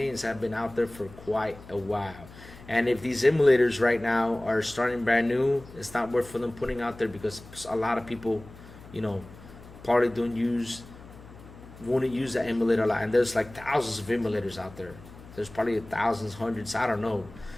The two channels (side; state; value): left; noise; hum, 19 dB below the sound